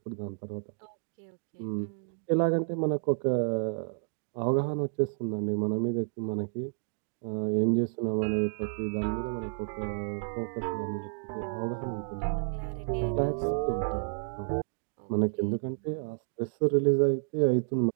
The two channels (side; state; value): left; silent; digital silence